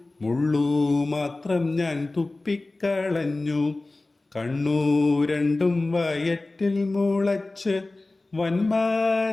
മുള്ളു മാത്രം ഞാൻ തുപ്പിക്കളഞ്ഞു. കണ്ണു രണ്ടും വയറ്റിൽ മുളച്ച്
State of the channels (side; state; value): right; quieter; 3.0 dB